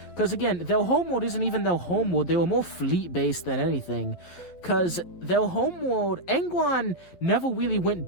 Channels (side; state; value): right; late; 12 ms